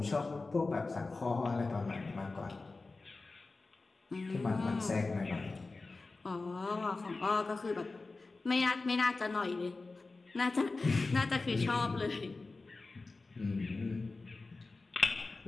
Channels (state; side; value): quieter; right; 3.6 dB